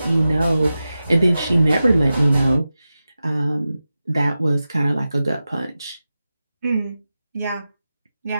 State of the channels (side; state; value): both; inverted; correlation -0.93